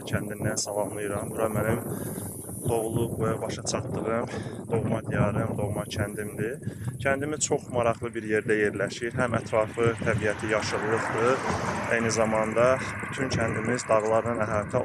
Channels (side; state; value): both; identical; correlation 1.00